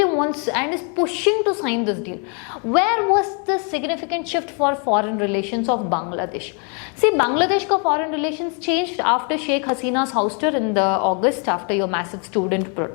wants and is pushing to sign this deal. Where was the significant shift for foreign relations of Bangladesh? See, Bangladesh ka foreign relations changed after Sheikh Hasina's ouster in the August after your massive student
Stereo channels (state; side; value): quieter; right; 37.9 dB